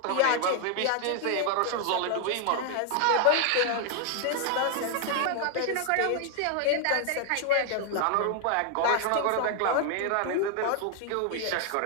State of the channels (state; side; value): different; both; correlation 0.00